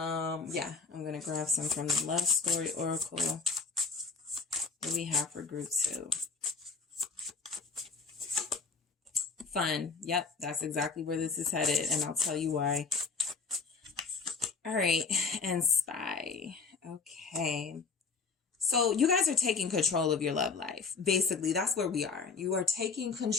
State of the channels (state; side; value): quieter; right; 4.8 dB